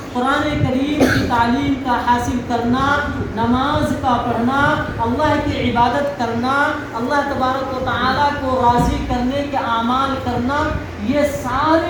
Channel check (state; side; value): identical; both; correlation 1.00